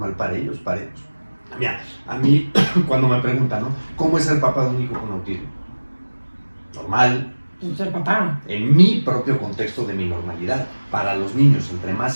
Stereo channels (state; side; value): inverted; both; correlation -1.00